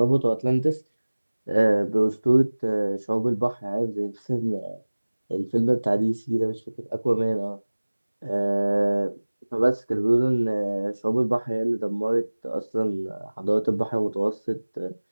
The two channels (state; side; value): inverted; both; correlation -1.00